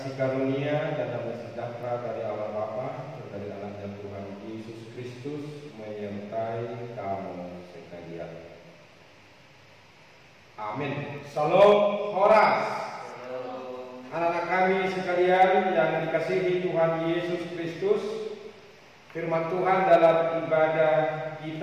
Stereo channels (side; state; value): both; identical; correlation 1.00